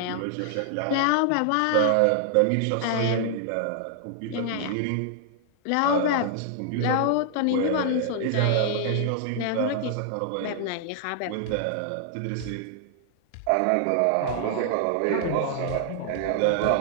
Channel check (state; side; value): different; both; correlation -0.01